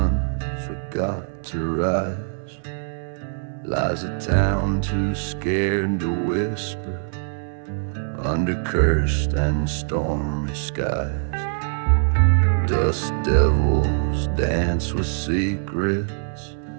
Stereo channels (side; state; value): left; silent; digital silence